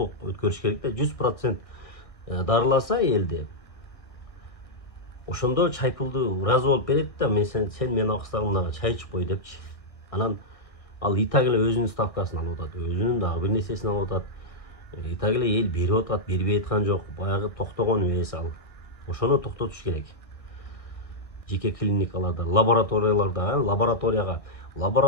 өткөрүш керек да. 100% дарыласа элди, ошондо чайпулду ыраазы болуп берет да, сен менин акысыздарымдагы чай ичип кой депчи. Анан ал и так эле өзүнүн ставкасын алып атат, өзүнүн дагы бир нерсесин алып атат. И так эле эл берип атат, бербей аткан жок. Баягы токтогон эмес ал. Ошону токтотуш керек. Жеке клиникаларда, лабораторияларда,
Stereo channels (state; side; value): late; right; 1.6 ms